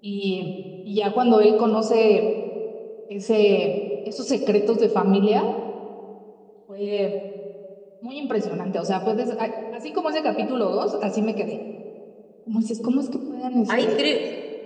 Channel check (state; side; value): identical; both; correlation 1.00